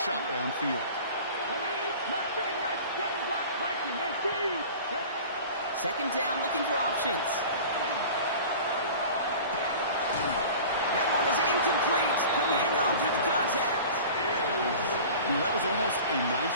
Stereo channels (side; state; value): both; inverted; correlation -0.40